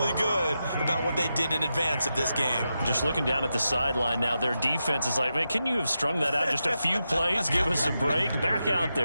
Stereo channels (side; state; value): both; inverted; correlation -0.88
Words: good about what they did in advance of this game. Just looking down at the sideline now, their defense is like, man, can you have strung that out just a few plays? Give us a break. Back out